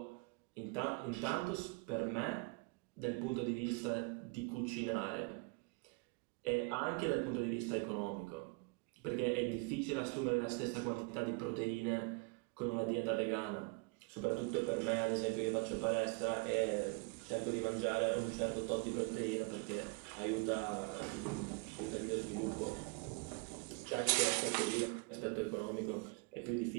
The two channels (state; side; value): quieter; left; 30.5 dB